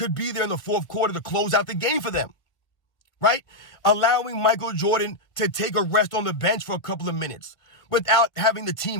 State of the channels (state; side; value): late; right; 1.6 ms